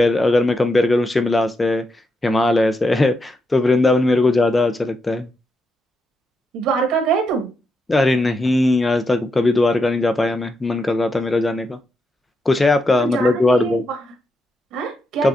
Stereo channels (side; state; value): both; normal; correlation 0.83